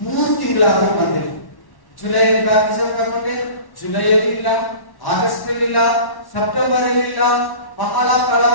3 ತಿಂಗಳಾದ್ರೂ ಬಂದೆ. ಜುಲೈ ಬ್ಯಾಪ್ಟಿಸಮ್ ತಗೊಂಡೆ. ಜುಲೈಯಲ್ಲಿ ಇಲ್ಲ, ಆಗಸ್ಟ್ ಅಲ್ಲಿ ಇಲ್ಲ, ಸೆಪ್ಟೆಂಬರ್ ಅಲ್ಲಿ ಇಲ್ಲ. ಬಹಳ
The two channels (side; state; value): right; late; 1.1 ms